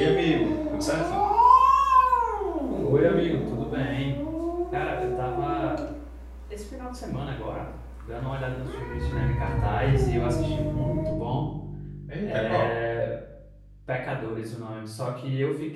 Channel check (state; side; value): identical; both; correlation 1.00